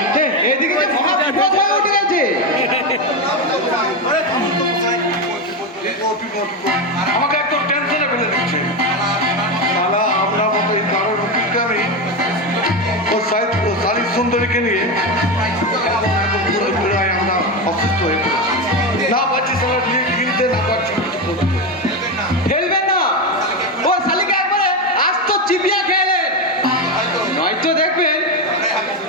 এদিকে যে মহাবিপদ হয়ে উঠে গেছে। আমাকে একদম টেনশনে ফেলে দিচ্ছে। শালা আমরা মতো এই কারোর অভিজ্ঞামী ও শালিক সুন্দরীকে নিয়ে আমরা অসুস্থ হয়ে পড়েছি। না পাচ্ছি শালা কিনতে, না পাচ্ছি কিছু করতে। খেলবেন না, ও শালিকে একবারে আস্ত চিবিয়া খেলেন, নয়তো দেখবেন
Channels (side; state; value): both; normal; correlation 0.13